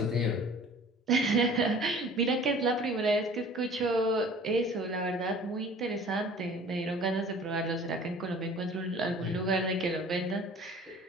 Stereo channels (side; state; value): both; normal; correlation 0.47